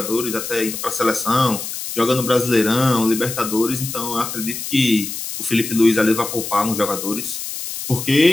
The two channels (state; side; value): noise; left; hiss, 7 dB below the sound